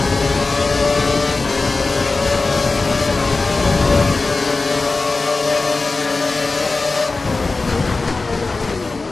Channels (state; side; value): quieter; right; 3.7 dB